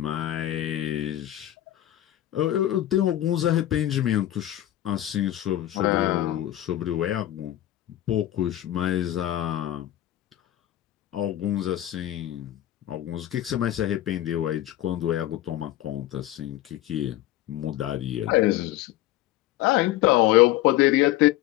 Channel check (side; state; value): right; quieter; 13.7 dB